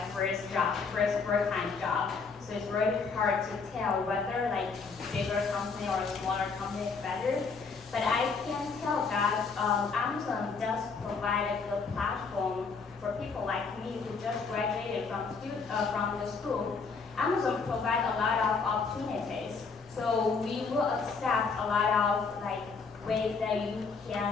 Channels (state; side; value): quieter; right; 4.9 dB